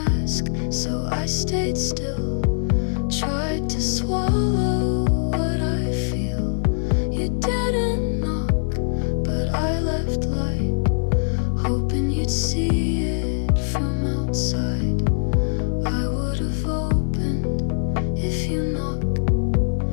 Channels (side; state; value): right; silent; digital silence